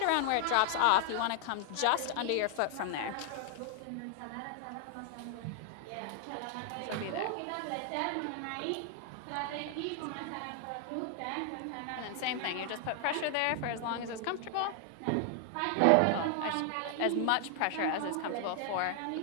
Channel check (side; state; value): both; different; correlation 0.00